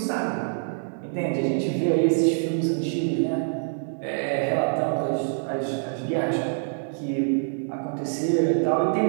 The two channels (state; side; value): silent; left; digital silence